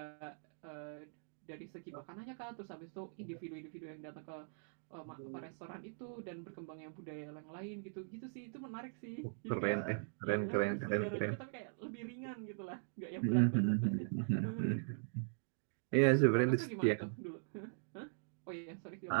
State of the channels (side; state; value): left; silent; digital silence